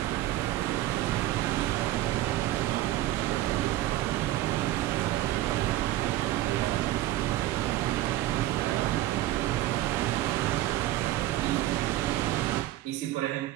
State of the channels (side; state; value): left; quieter; 15.1 dB